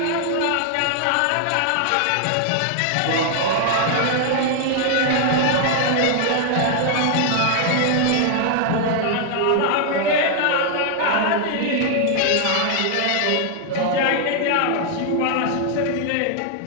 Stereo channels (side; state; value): both; different; correlation 0.00